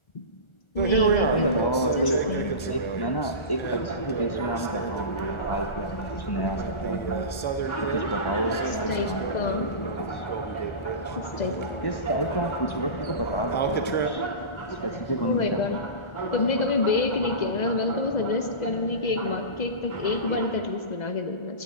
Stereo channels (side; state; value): right; late; 1.4 ms